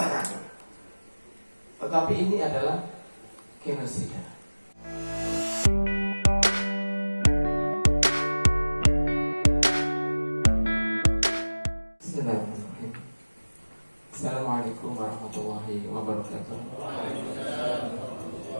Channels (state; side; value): inverted; both; correlation -1.00